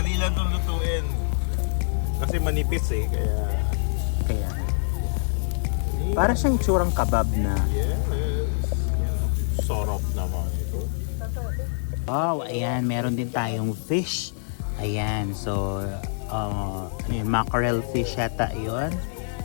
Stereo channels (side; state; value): right; silent; digital silence